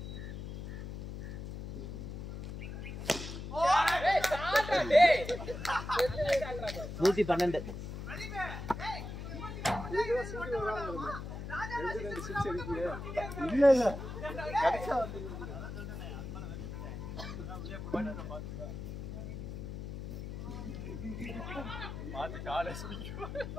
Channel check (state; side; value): noise; left; hum, 7 dB below the sound